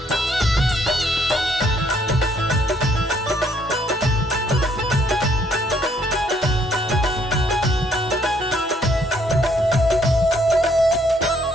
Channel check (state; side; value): normal; both; correlation 0.67